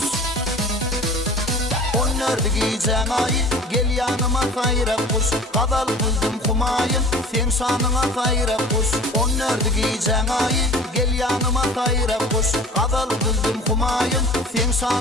on nerede giyeceğin ayı gel yanıma tayrap kuş kadal kızdım kumayın sen şanına tayrap kuş on nerede giyeceğin ayı gel yanıma tayrap kuş kadal kızdım kumayın sen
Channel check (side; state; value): both; normal; correlation 0.42